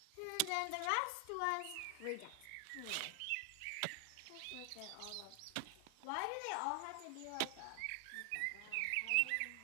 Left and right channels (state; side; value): different; both; correlation 0.00